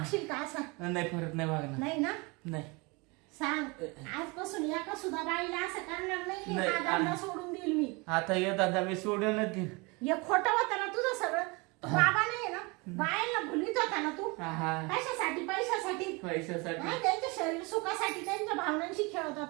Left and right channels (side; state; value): left; quieter; 27.5 dB